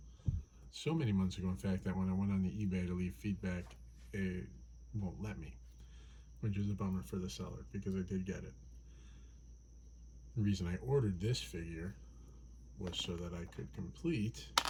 So many months ago, in fact, that when I went on the eBay to leave feedback, it won't let me, which is a bummer for the seller because I did get it. The reason I ordered this figure was so that I could complete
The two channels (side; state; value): both; identical; correlation 1.00